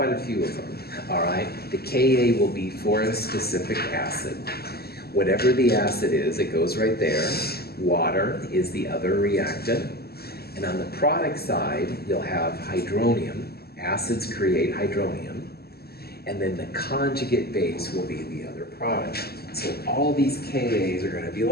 a few of them, all right, the Ka will be for a specific acid. Whatever the acid is, it goes right there. Water is the other reactant. And on the product side, you'll have hydronium. Acids create hydronium. And then the conjugate base will be the other product. So all these Kas are going to be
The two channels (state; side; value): late; right; 0.46 ms